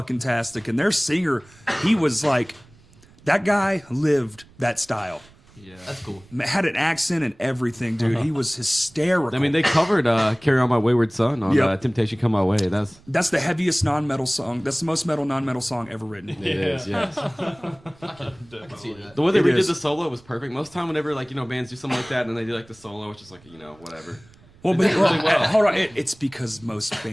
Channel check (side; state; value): right; noise; rumble, 26 dB below the sound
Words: tastic. And their singer, he was like, that guy lived that style. Yeah. That's cool. Had an accent and everything, dude. He was hysterical. I mean, they covered "Carry On My Wayward Son" on Yep. "Temptation Come My Way." That's the heaviest non-metal song. That's the most metal non-metal song ever written. It is, yes. I can see that. The way they It redid is. the solo was perfect. Most time, whenever like bands do something like that, and then they do like the solo, it's just like whatever. Well, They but did really well. hold on. It's because most